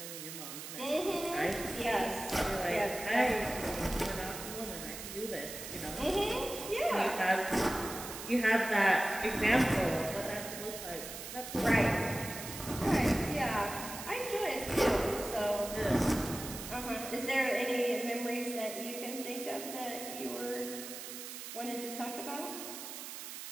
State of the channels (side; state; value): right; noise; hiss, 9 dB below the sound